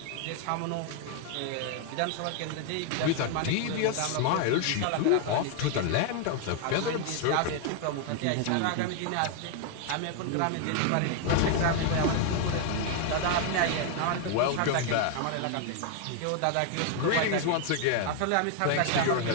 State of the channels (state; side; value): different; both; correlation 0.00